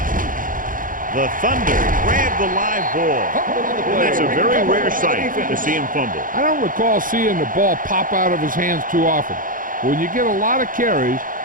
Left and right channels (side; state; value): left; late; 0.40 ms